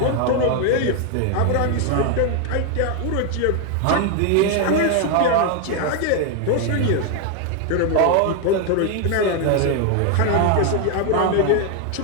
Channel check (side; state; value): both; different; correlation 0.01